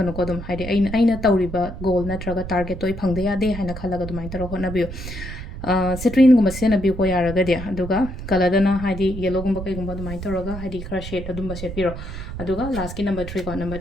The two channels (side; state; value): right; noise; rumble, 9 dB below the sound